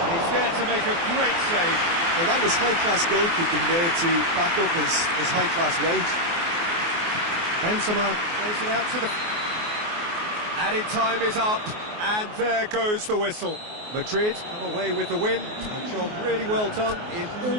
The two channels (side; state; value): left; late; 24 ms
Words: And he's there to make a great save. Well, that was high-class goalkeeping there to back up his high-class wage. Benzema plays it out to the... Added time is up, and there goes the whistle. Madrid come away with the win. A job really well done in all